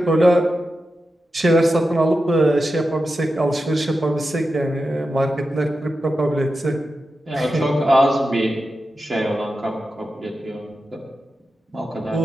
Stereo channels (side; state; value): both; normal; correlation 0.91